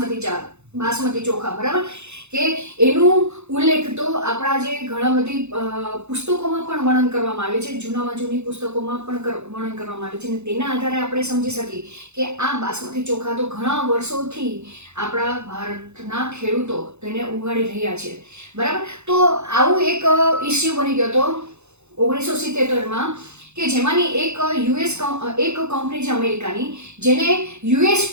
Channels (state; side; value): late; left; 0.81 ms